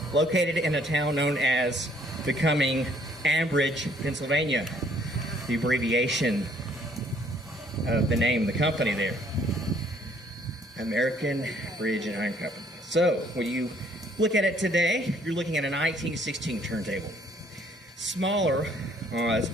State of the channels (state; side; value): normal; both; correlation 0.63